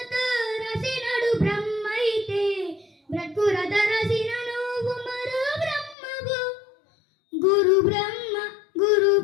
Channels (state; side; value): drops out; right; at 6.0 s